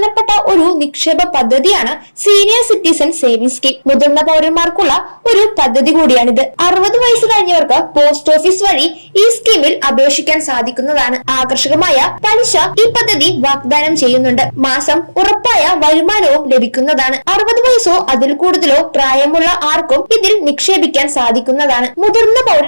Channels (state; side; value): inverted; both; correlation -1.00